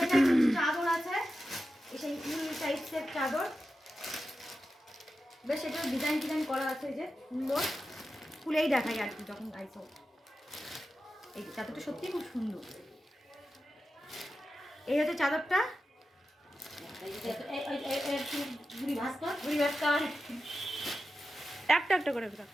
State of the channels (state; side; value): normal; both; correlation 0.91